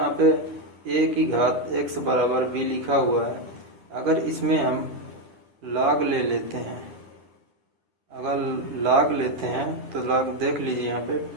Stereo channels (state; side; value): late; left; 10 ms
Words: पे a की घात x बराबर b लिखा हुआ है। अगर इसमें हम लॉग ले लेते हैं, अगर लॉग लेते हैं तो लॉग देख लीजिए यहाँ पे,